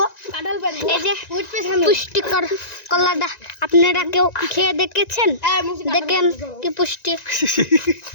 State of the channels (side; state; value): right; late; 1.9 ms